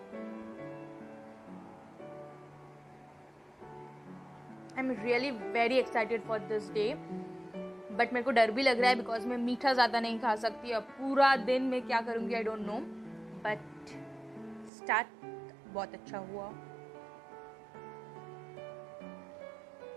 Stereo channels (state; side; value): drops out; left; at 14.7 s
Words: I'm really very excited for this day. But मेरे को डर भी लग रहा है बिकॉज मैं मीठा ज़्यादा नहीं खा सकती. अब पूरा दिन मैं क्या करूँगी I don't know. But start बहुत अच्छा हुआ.